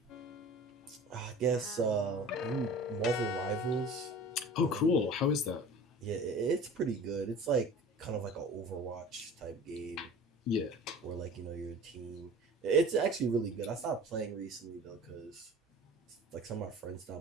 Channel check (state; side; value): normal; both; correlation 0.41